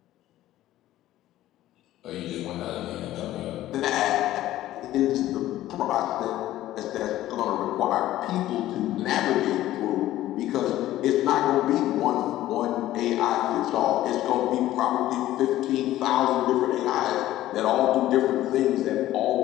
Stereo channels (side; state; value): right; quieter; 14.4 dB